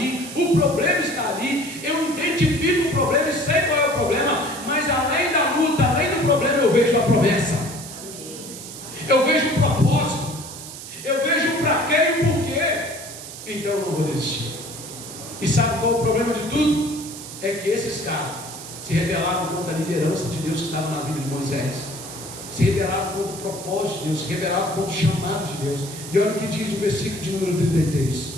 o problema está ali, eu identifico o problema e sei qual é o problema, mas além da luta, além do problema, eu vejo a promessa. Eu vejo o propósito. Eu vejo o para quê e o porquê. Então eu não vou desistir. E sabe qual é o problema de tudo? É que esses caras se rebelaram contra a liderança de Deus que estava na vida de Moisés, se rebelaram contra o propósito de Deus, se rebelaram contra o chamado de Deus. E olha o que diz o versículo de número 33.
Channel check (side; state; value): right; noise; hiss, 12 dB below the sound